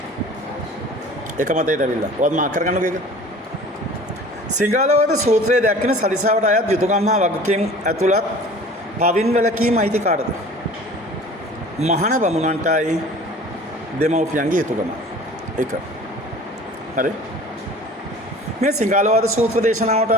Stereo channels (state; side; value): normal; both; correlation 0.44